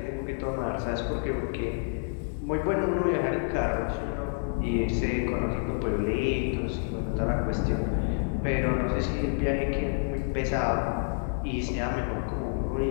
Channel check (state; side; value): silent; right; digital silence